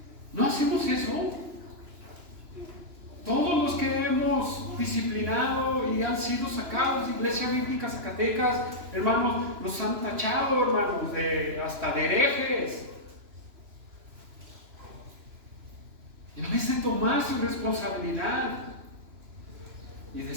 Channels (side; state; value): left; late; 3.0 ms